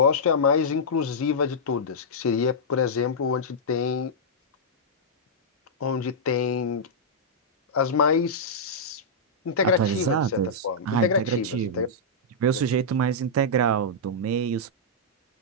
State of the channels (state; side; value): normal; both; correlation -0.10